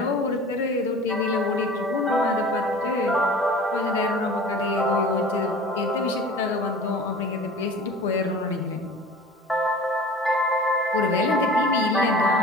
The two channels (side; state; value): both; normal; correlation 0.41